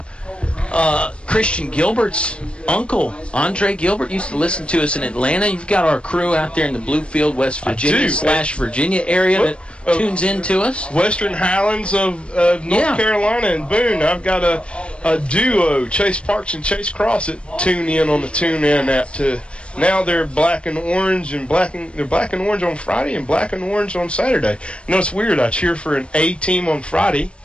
Christian Gilbert's uncle, Andre Gilbert, used to listen to us in Atlanta. You've got our crew out there in the Bluefield, West Virginia / Virginia area that tunes in to us. Western Highlands of North Carolina and Boone. I've got a duo, Chase Parks and Chase Cross, that tune in on the TuneIn app too. Now they're black and orange, and they're black and orange on Friday and black and orange on Saturday. You know, it's weird. I cheer for an A team on Friday,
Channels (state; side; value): late; right; 0.058 ms